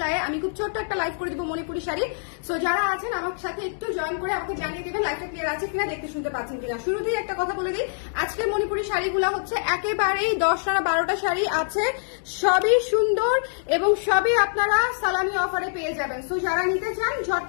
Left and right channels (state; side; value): silent; right; digital silence